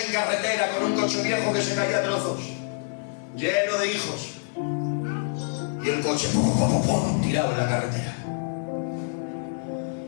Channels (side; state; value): right; silent; 61 dB below the other